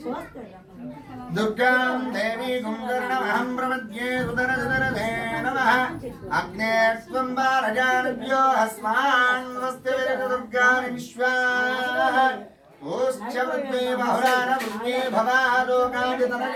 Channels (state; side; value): identical; both; correlation 1.00